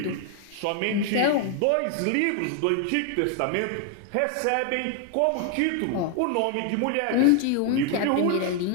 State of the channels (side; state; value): both; different; correlation 0.00